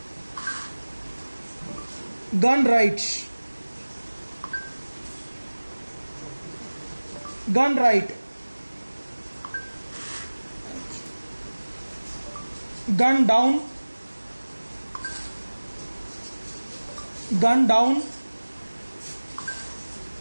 gun right, gun right, gun down, gun down,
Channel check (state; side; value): inverted; both; correlation -1.00